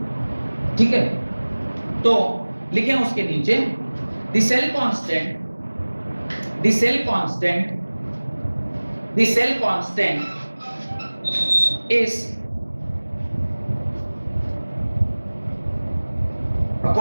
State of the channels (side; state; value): both; inverted; correlation -1.00